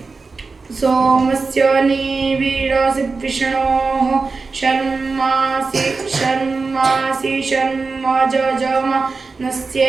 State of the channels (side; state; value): left; quieter; 4.2 dB